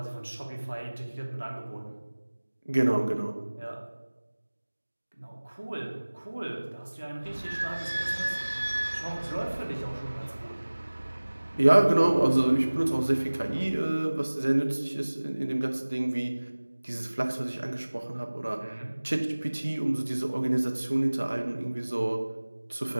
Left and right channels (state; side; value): inverted; both; correlation -1.00